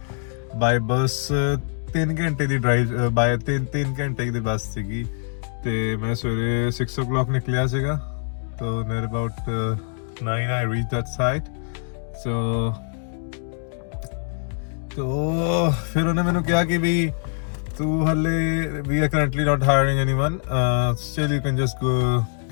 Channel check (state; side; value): silent; right; 63 dB below the other